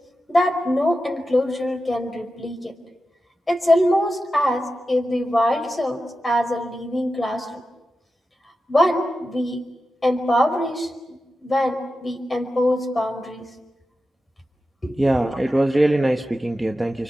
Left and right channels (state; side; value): normal; both; correlation 0.92